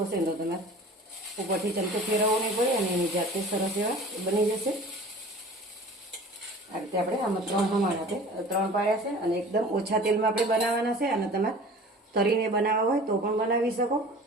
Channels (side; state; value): both; normal; correlation 0.43